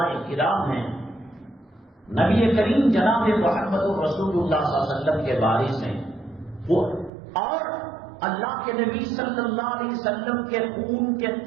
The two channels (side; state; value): left; drops out; at 7.1 s